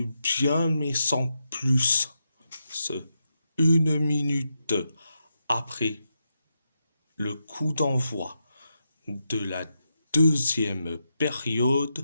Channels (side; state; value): both; inverted; correlation -0.85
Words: bien, mais sans plus. Une minute après le coup d'envoi de la deuxième